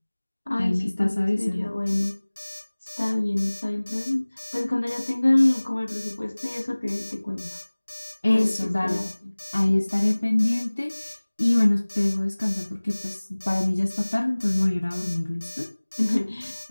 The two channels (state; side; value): inverted; both; correlation -1.00